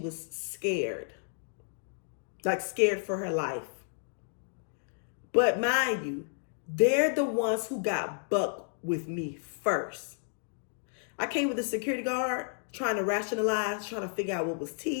scared. Like, scared for her life. But mind you, they're the ones who got bucked with me first. I came with a security guard trying to rationalize, trying to figure out what was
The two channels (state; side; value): silent; right; digital silence